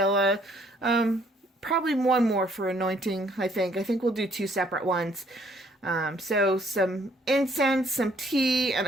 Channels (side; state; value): both; normal; correlation 0.64